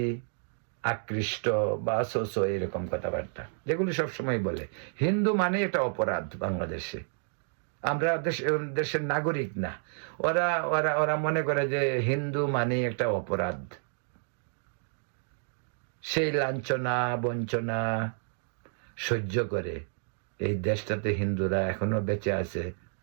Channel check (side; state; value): left; silent; 58 dB below the other